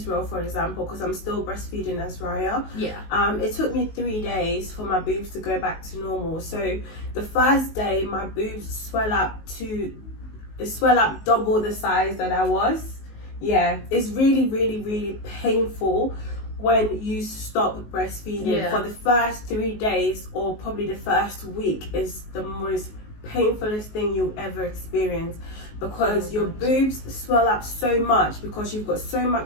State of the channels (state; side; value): late; right; 19 ms